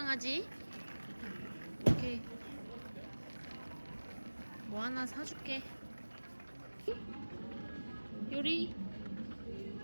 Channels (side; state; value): both; inverted; correlation -1.00